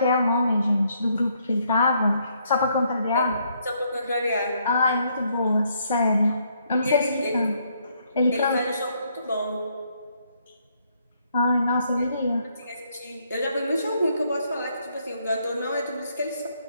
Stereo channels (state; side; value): inverted; both; correlation -0.71